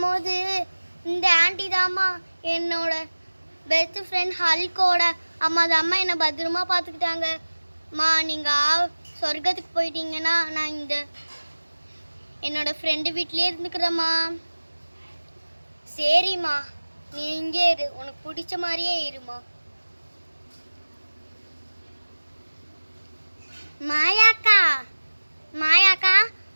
போது இந்த ஆண்டி தாம்மா என்னோட பெஸ்ட் ஃப்ரெண்ட் ஹல்கோட அம்மா தாம்மா என்னை பத்திரமா பார்த்துக்கிட்டாங்க. மா, நீங்கள் சொர்க்கத்துக்கு போயிட்டீங்கன்னா நான் இந்த என்னோட ஃப்ரெண்டு வீட்டிலே இருந்துக்கிறேம்மா. சரிம்மா, நீ இங்கே இரு, உனக்கு பிடிச்ச மாதிரியே இருமா. மாயாக்கா, மாயாக்கா,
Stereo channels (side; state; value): both; inverted; correlation -1.00